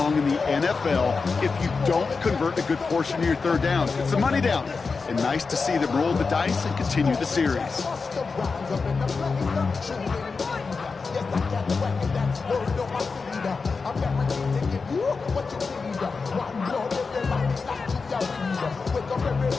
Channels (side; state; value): right; quieter; 4.6 dB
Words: in the NFL if you don't convert a good portion of your third downs. It's the money down. And nice to see them roll the dice and continue the series.